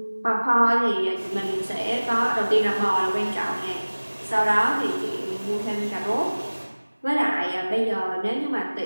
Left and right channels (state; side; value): inverted; both; correlation -1.00